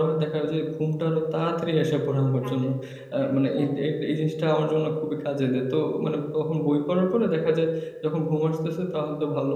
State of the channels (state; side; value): identical; both; correlation 1.00